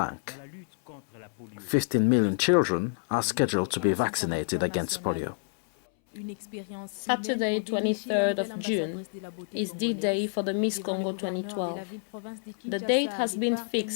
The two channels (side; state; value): right; silent; 59 dB below the other